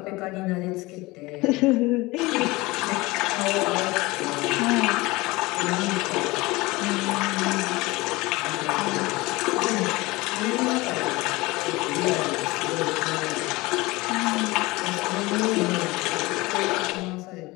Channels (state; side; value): quieter; right; 21.8 dB